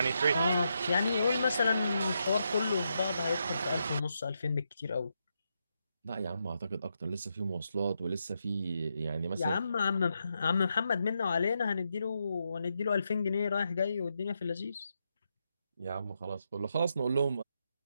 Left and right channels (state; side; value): inverted; both; correlation -0.83